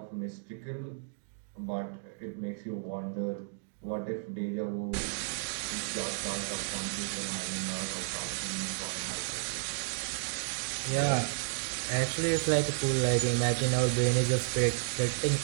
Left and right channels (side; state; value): left; silent; digital silence